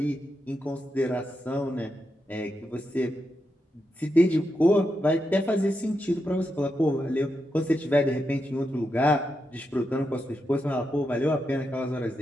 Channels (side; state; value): both; normal; correlation 0.85